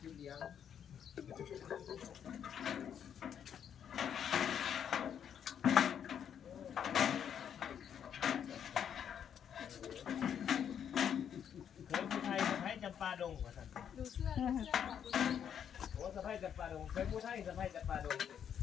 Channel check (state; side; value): quieter; right; 8.6 dB